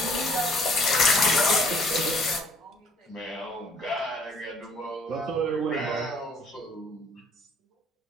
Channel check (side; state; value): both; normal; correlation 0.59